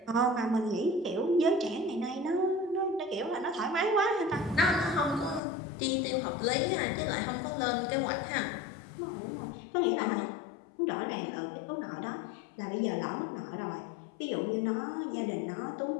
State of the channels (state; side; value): drops out; right; at 5.4 s